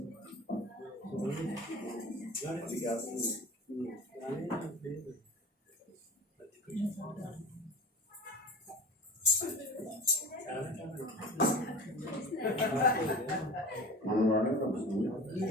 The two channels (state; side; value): normal; both; correlation 0.36